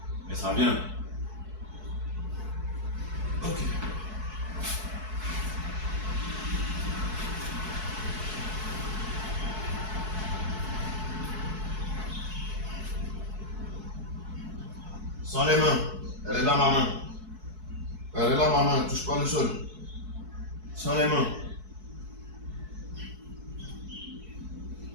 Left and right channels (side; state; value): left; late; 4.6 ms